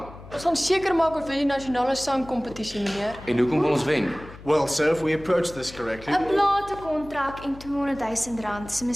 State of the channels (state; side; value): noise; left; hum, 17 dB below the sound